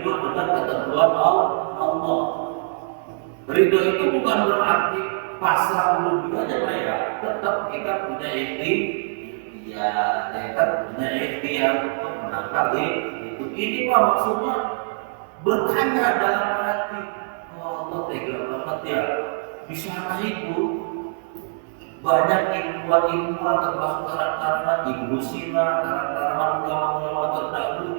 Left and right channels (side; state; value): left; silent; 63 dB below the other